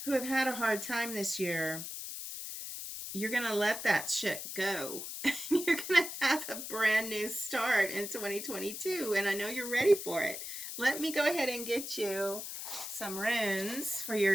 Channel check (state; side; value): noise; left; hiss, 7 dB below the sound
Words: who have had a hard time this year, you're going to let that shit go. You're going to have a brand new start in 2022. And I know you're ready for it. Let me go ahead and get you some runes for